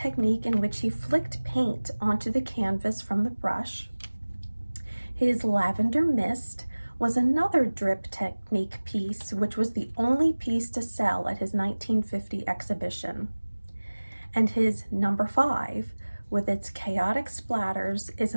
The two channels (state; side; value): inverted; both; correlation -1.00